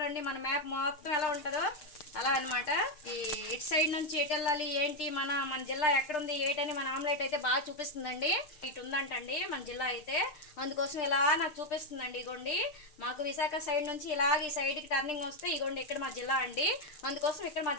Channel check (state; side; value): late; right; 6.6 ms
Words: మన మ్యాప్ మొత్తం ఎలా ఉంటుందో అలా అనమాట. ఈ ఇటు సైడ్ నుంచి ఎటు వెళ్ళాలి ఏంటి, మన జిల్లా ఎక్కడుంది ఏంటని మన ఆమ్లెట్ అయితే బాగా చూపిస్తుందండి. ఇటు ఉందంటండి మన జిల్లా అయితే, అందుకోసం ఇలా నాకు చూపిస్తుందండి. ఇగోండి మాకు విశాఖ సైడ్ నుంచి ఇలాగ ఈ సైడ్కి టర్నింగ్ వస్తే ఇగోండి ఇక్కడ మా జిల్లా అండి. అందుకోసం ఇక్కడ మా